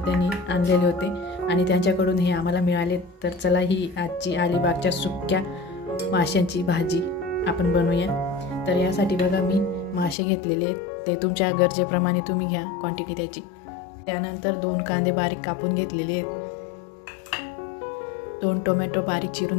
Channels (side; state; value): right; drops out; at 10.2 s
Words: त्यांनी आणलेले होते आणि त्यांच्याकडून हे आम्हाला मिळाले। तर चला ही आजची अलिबागच्या सुक्या माशांची भाजी आपण बनवूया। तर यासाठी बघा मी मासे घेतलेले आहेत, ते तुमच्या गरजेप्रमाणे तुम्ही घ्या क्वांटिटी त्याची। त्यानंतर 2 कांदे बारीक कापून घेतलेले आहेत, 2 टोमॅटो बारीक